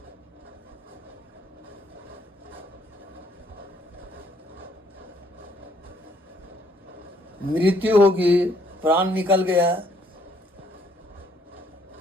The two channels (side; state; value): both; normal; correlation 0.66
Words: मृत्यु होगी, प्राण निकल गया,